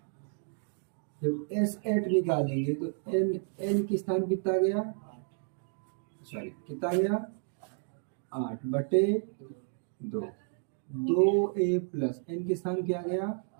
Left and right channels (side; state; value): left; silent; 57 dB below the other